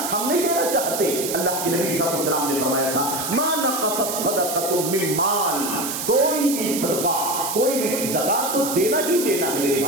ہم نہیں دینا چاہتے۔ اللہ کے نبی صلی اللہ علیہ وسلم نے فرمایا تھا ما نقصت صدقۃ من مال، کوئی بھی صدقہ، کوئی بھی زکات تو دینا ہی دینا ہے میرے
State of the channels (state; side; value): noise; right; hiss, 4 dB below the sound